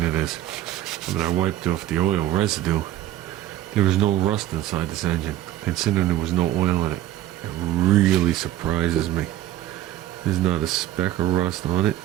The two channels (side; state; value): left; quieter; 13.3 dB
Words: it is. I mean, I wiped off the oil residue. There was no rust inside this engine, considering there was no oil in it. It really surprises me. There's not a speck of rust on it.